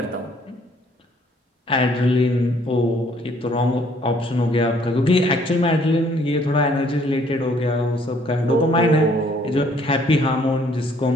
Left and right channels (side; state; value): both; normal; correlation 0.62